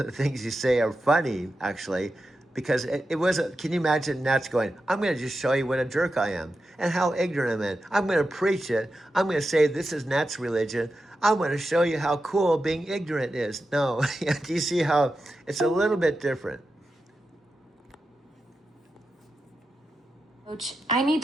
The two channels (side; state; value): both; normal; correlation 0.90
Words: the things you say are funny, actually, because it was can you imagine Nat's going, I'm going to just show you what a jerk I am and how ignorant I am. I'm going to preach it. I'm going to say this is Nat's religion. I'm going to show you how cool being ignorant is. No, do you see how it's a little bit different? Coach, I need